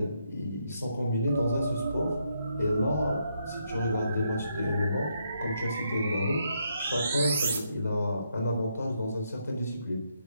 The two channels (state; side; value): inverted; both; correlation -0.77